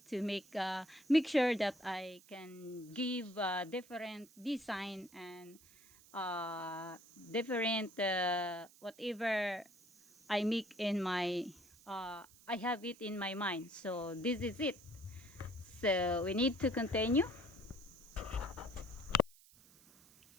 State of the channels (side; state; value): right; noise; hiss, 24 dB below the sound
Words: to make sure that I can give different design and different whatever I make in my I have it in my mind. So this is it. So we need to continue.